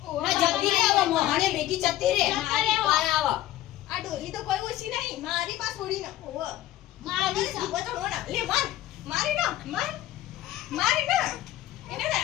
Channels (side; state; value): right; quieter; 14.3 dB